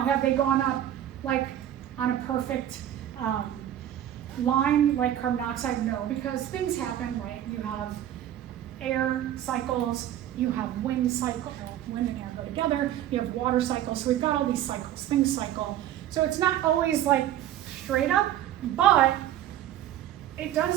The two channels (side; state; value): left; quieter; 11.7 dB